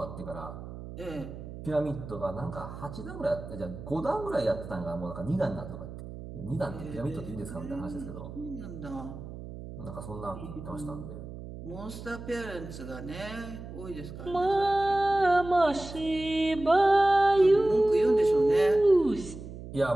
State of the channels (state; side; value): noise; right; hum, 12 dB below the sound